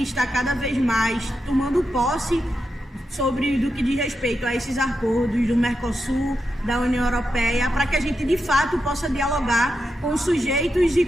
estar cada vez mais tomando posse sobre do que diz respeito a esses acordos do Mercosul, da União Europeia, para que a gente de fato possa dialogar com os sujeitos e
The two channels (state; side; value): normal; both; correlation 0.87